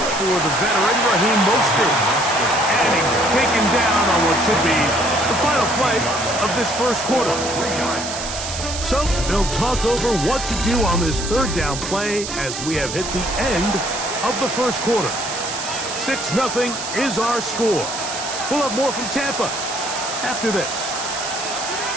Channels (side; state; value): right; noise; hiss, 6 dB below the sound